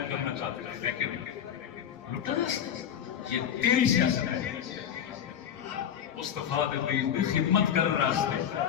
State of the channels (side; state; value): right; quieter; 9.2 dB